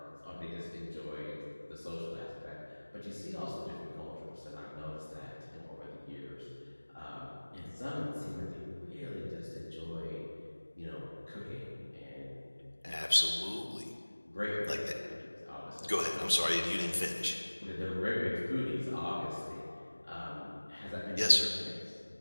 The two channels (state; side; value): inverted; both; correlation -1.00